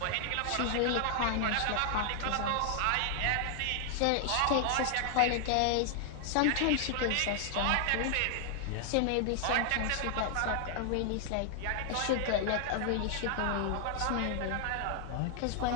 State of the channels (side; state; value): both; different; correlation 0.00